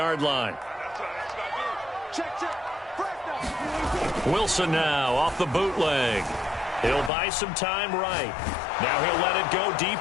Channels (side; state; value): right; drops out; at 7.1 s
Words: line. Wilson now off the bootleg. He'll buy some time right. Now he'll let it go